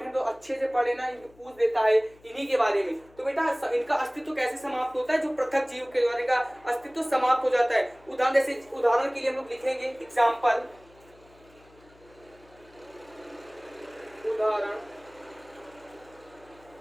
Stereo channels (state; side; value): noise; left; hum, 27 dB below the sound